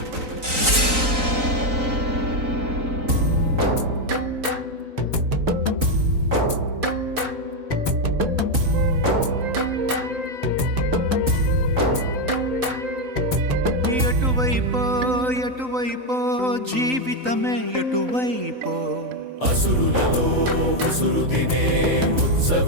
ఎటువైపో ఎటువైపో జీవితమే ఎటువైపో అసురులలో ఉసురు తినే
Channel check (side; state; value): left; late; 3.9 ms